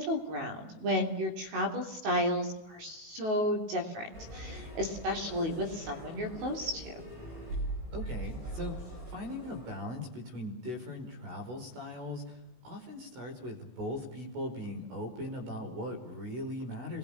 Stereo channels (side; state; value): left; late; 19 ms